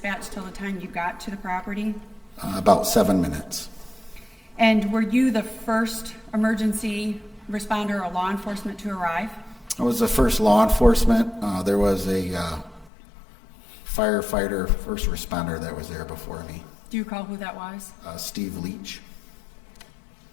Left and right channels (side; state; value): right; drops out; at 12.9 s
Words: till the time you got to the property? About 7 minutes. And were you the first emergency responder or law enforcement to arrive? I was the first law enforcement. There was a firefighter, first responder that was there before me. Do you recall who that was? Steve Leach.